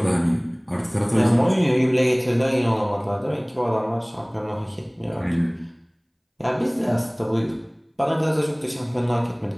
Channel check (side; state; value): both; identical; correlation 1.00